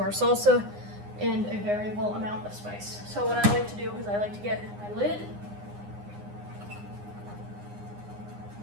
salsa and a variable amount of spice. So what I like to do is I like to get my lid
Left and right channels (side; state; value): left; late; 9.8 ms